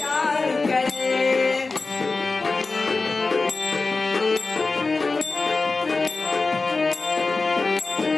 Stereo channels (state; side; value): quieter; right; 3.8 dB